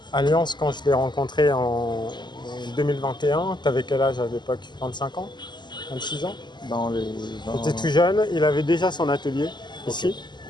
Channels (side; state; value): right; late; 0.21 ms